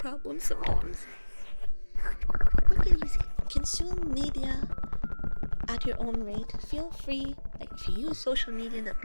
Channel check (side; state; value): both; inverted; correlation -1.00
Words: sometimes. Look at easy. Consume media at your own rate. Feel free, like if you use social media to